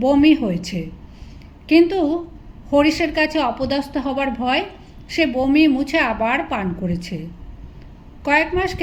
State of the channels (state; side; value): identical; both; correlation 1.00